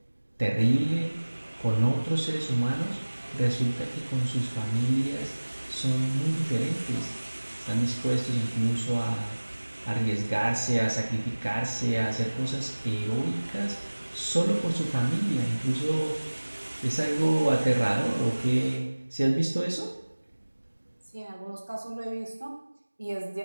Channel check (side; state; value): both; inverted; correlation -1.00